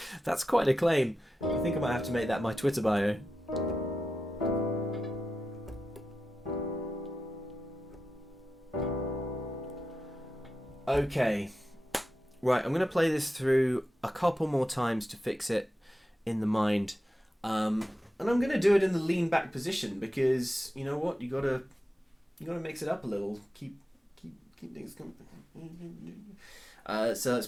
That's quite a claim. I think I might have to make that my Twitter bio. Okay. Right, I'm going to play this through a couple more times to fix it in the mind. And I'm going to do it in the lean back position because, you know what, you gotta mix it up a little. Keep things coming. So let's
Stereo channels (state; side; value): normal; both; correlation 0.91